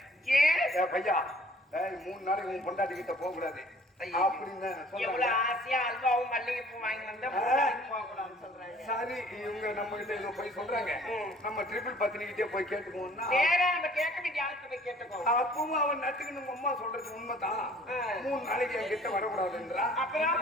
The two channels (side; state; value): both; normal; correlation 0.54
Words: ஏன் டேய் பையா 3 நாளைக்கு உன் பொண்டாட்டி கிட்ட போக கூடாது அப்படின்னு எவ்வளவு சொல்றாங்க. ஆசையா அல்வாவும் மல்லிகைப்பூ வாங்கி வந்தா போக கூடாதுன்னு சொல்றாங்க. சரி இவங்க நம்ம கிட்ட ஏதோ போய் சொல்றாங்க. நம்ம ட்ரிபிள் பத்தினிக்கிட்டே போய் கேட்டுக்குவோம்னா நேரா நம்ம கேட்க வேண்டிய ஆளுக்கு போய் கேட்டுக்கோ. அப்பவும் அவன் நட்டுக்கு நம்ம அம்மா சொல்றது உண்மைதான். 3 நாளைக்கு என் கிட்ட வரக்கூடாதுன்றா.